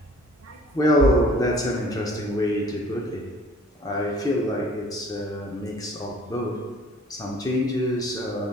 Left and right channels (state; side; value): normal; both; correlation 0.52